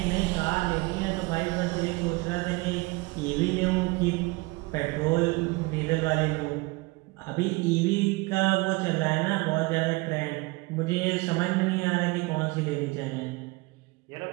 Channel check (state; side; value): quieter; left; 24.5 dB